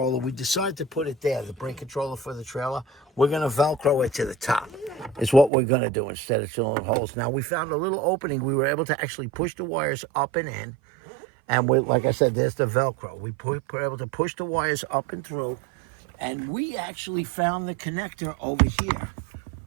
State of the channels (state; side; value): drops out; left; at 5.5 s